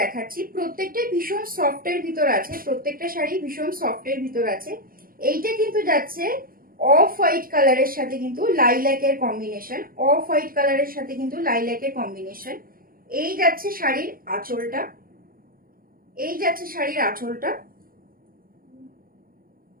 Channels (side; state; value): left; late; 0.42 ms